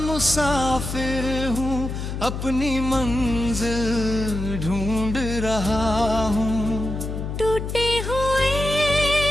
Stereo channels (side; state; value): left; noise; hum, 5 dB below the sound